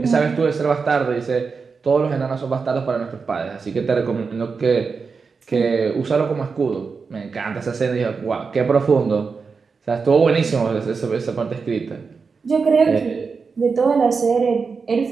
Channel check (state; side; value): quieter; left; 5.0 dB